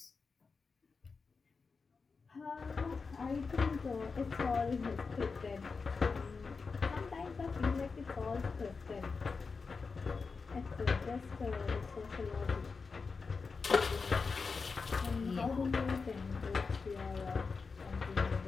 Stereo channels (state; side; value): quieter; right; 4.7 dB